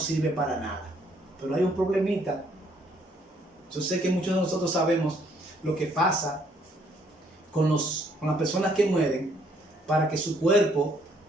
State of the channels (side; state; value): both; normal; correlation 0.67